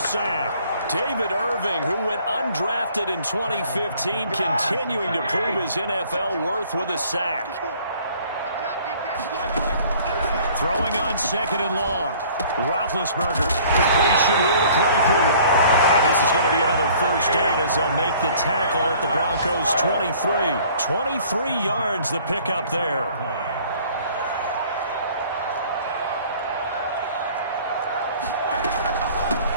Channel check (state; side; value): inverted; both; correlation -0.54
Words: David Irving, who went undrafted in 2015, continuing to prove his NFL worth with a sack. Throwing on 2nd and long. Roethlisberger. Completion here to Claypool. And this is going to be another 1st down as they'll make the tackle at the Broncos' 23. 23 yards the pickup there.